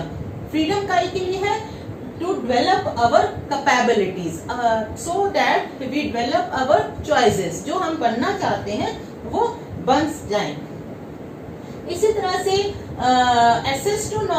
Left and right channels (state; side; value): identical; both; correlation 1.00